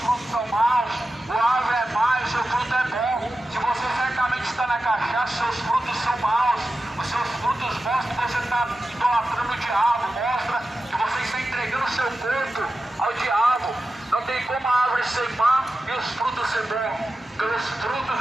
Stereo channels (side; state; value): both; normal; correlation 0.92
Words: frutos são maus. Ou a árvore é má, o seu fruto é bom. Se você certamente está na cachaça, seus frutos são maus. Os seus frutos mostram que você está idolatrando o diabo. Mostra que você está entregando o seu corpo ao diabo. Não tem como a árvore ser má e os frutos ser bons. Pelos frutos